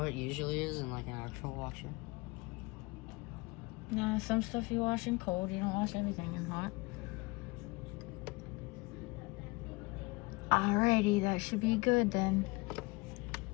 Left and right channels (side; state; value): right; quieter; 24.7 dB